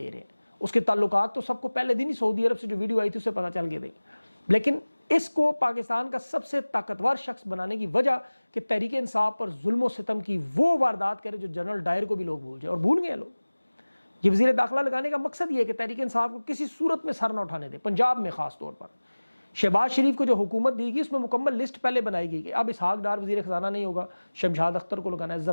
रहे हैं। उसके ताल्लुकात तो सबको पहले दिन ही सऊदी अरब से जो वीडियो आई थी उससे पता चल गए थे। लेकिन इसको पाकिस्तान का सबसे ताकतवर शख्स बनाने की वजह कि तहरीक इंसाफ पर जुल्म सितम की वो वारदात करे जो जनरल डायर को भी लोग भूल जाए, और भूल गए लोग। ये वजीर दाखिला लगाने का मकसद ये है कि तहरीक इंसाफ को किसी सूरत में सर न उठाने दे। पंजाब में खास तौर पर शहबाज शरीफ को जो हुकूमत दी गई उसमें मुकम्मल लिस्ट पहले बनाई गई कि अब इसहाक डार वजीर खजाना नहीं होगा, शमशाद अख्तर को लगाना है।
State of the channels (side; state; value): both; inverted; correlation -1.00